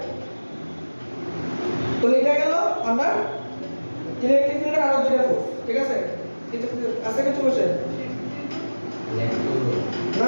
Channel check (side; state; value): both; inverted; correlation -1.00